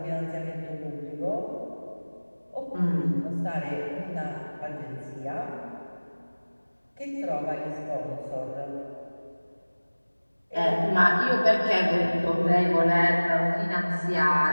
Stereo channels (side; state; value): both; inverted; correlation -1.00